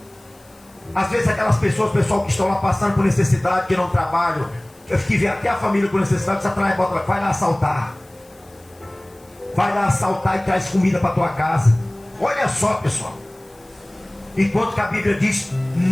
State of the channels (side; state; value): left; noise; hiss, 29 dB below the sound